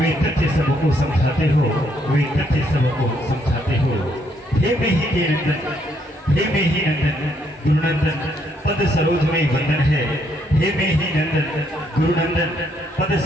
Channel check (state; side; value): normal; both; correlation 0.72